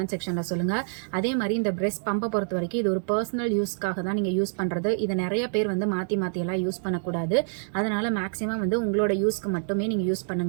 செக்ஷனில் சொல்லுங்கள். அதே மாதிரி இந்த பிரெஸ்ட் பம்பை பொறுத்த வரைக்கும் இது ஒரு பர்சனல் யூஸ்க்காக தான் நீங்கள் யூஸ் பண்ணுறது. இதை நிறைய பேர் வந்து மாற்றியெல்லாம் யூஸ் பண்ணக்கூடாது. அதனால் மேக்ஸிமம் வந்து உங்களோட யூஸ்க்கு மட்டுமே நீங்கள் யூஸ்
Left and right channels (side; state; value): left; silent; 60 dB below the other